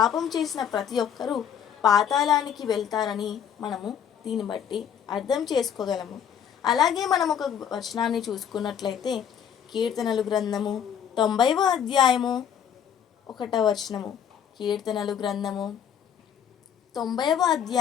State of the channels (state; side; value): quieter; right; 8.5 dB